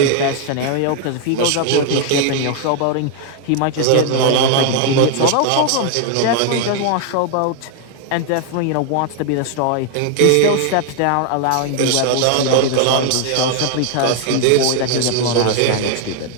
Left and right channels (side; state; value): both; different; correlation 0.00